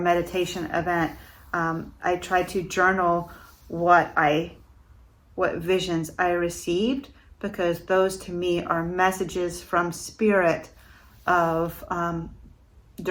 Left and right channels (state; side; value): identical; both; correlation 1.00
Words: event, I try to journal what visions I received, because those to me are messages from spirit of